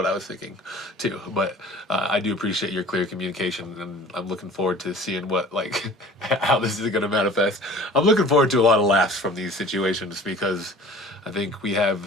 I was thinking too. But I do appreciate your clear communication, and I'm looking forward to seeing what like how this is going to manifest. I'm looking forward to a lot of laughs from these situations because I think we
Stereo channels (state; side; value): normal; both; correlation 0.45